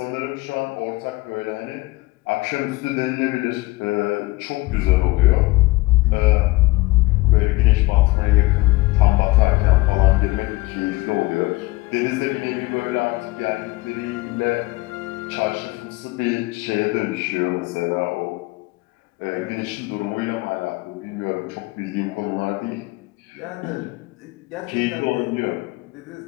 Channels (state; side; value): quieter; right; 21.1 dB